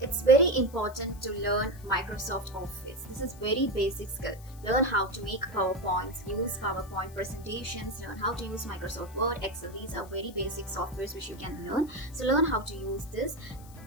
It's very important to learn Microsoft Office. This is very basic skill. Learn how to make PowerPoints, use PowerPoint presentations, learn how to use Microsoft Word, Excel. These are very basic softwares which you can learn. So learn how to use this.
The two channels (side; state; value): left; noise; hiss, 22 dB below the sound